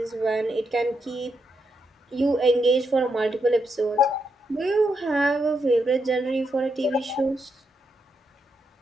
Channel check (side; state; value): both; normal; correlation 0.81